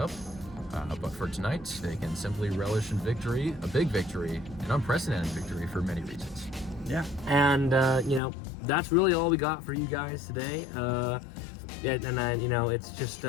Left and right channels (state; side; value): drops out; right; at 8.2 s